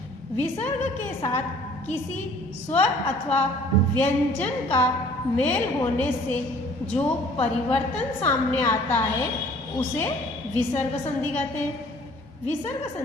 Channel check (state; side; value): normal; both; correlation 0.54